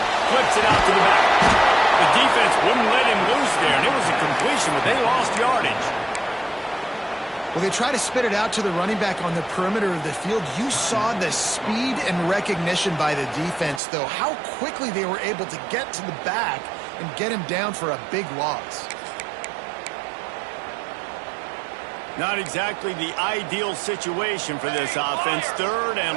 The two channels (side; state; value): left; drops out; at 13.8 s